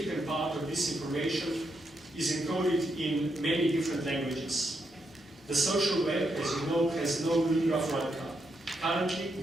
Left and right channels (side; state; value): both; normal; correlation 0.81